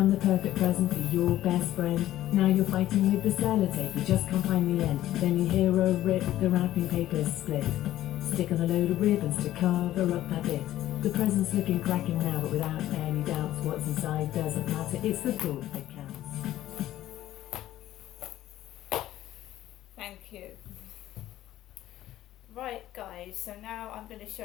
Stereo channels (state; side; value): quieter; right; 13.8 dB